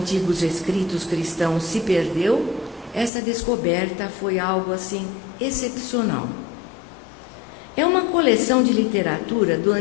escritos cristãos se perdeu, essa descoberta foi algo assim excepcional. É uma coleção de literatura do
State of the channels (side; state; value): right; drops out; at 3.1 s